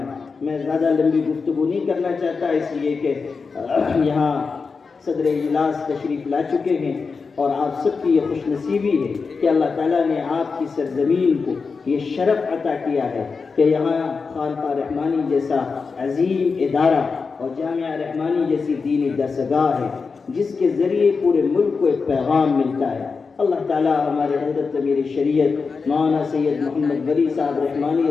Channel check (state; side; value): quieter; right; 4.9 dB